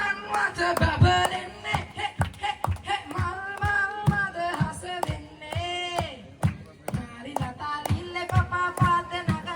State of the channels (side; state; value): both; identical; correlation 1.00